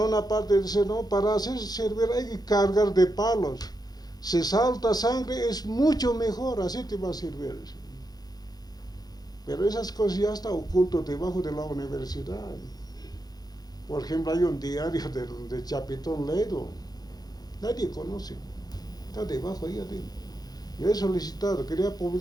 parte dice, no, para hacerse servir hay que cargar de palos. Si salta sangre es mucho mejor, así te va a servir. Pero esas cosas ya están ocultas debajo de la universidad. Por ejemplo, hay un diario de Chapitón Ledo. Nadie conoce, está debajo ahí adentro. Yo he solicitado, quería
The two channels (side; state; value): right; late; 0.19 ms